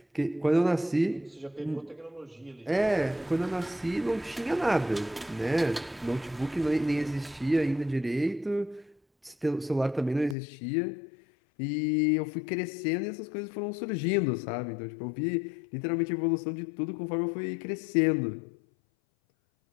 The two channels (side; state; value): right; drops out; at 10.4 s